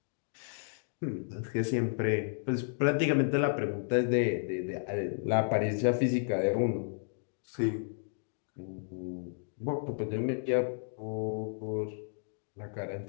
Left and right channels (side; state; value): right; silent; digital silence